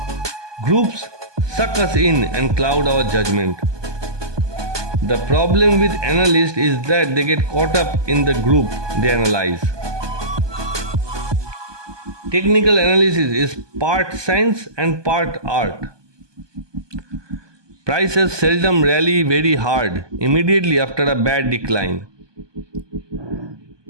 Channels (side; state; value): left; late; 1.2 ms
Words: Groups suck us in and cloud our judgment. The problem with analysts is that they get caught up in the group they analyze. Technical analysis is part science and part art. Prices seldom rally very hard immediately after a bad decline.